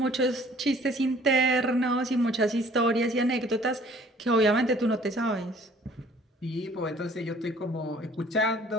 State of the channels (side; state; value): both; normal; correlation 0.55